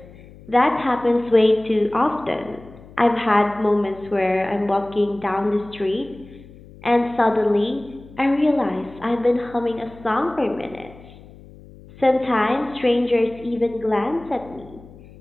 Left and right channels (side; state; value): left; noise; hum, 21 dB below the sound